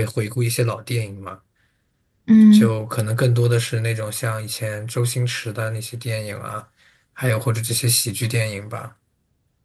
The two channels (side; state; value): both; identical; correlation 1.00